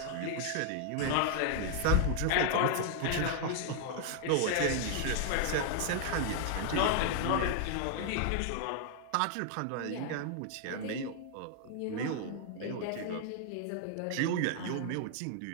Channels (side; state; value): both; different; correlation 0.00